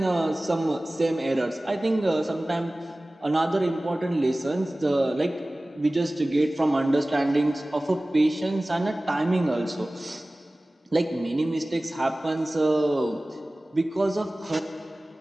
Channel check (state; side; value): normal; both; correlation 0.98